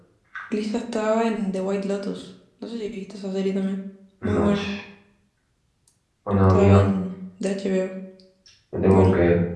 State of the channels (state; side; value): identical; both; correlation 1.00